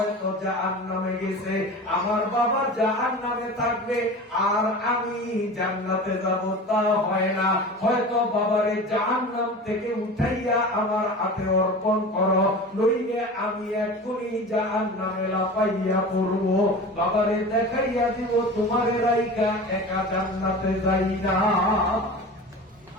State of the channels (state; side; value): normal; both; correlation 0.34